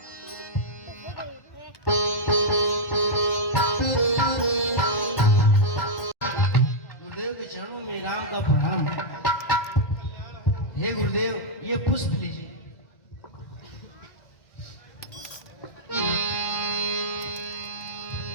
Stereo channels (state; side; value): late; right; 2.1 ms